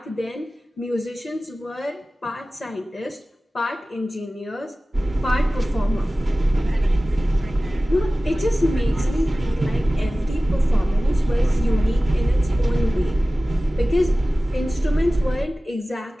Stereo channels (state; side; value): normal; both; correlation 0.97